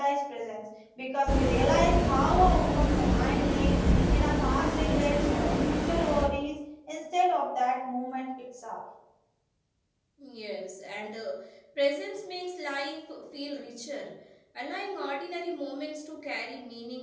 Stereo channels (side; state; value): both; identical; correlation 1.00